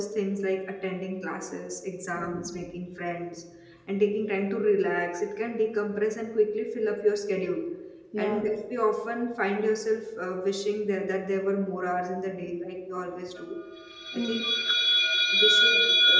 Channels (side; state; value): both; identical; correlation 1.00